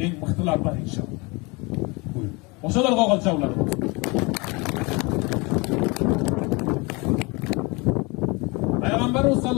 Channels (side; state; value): right; quieter; 27.1 dB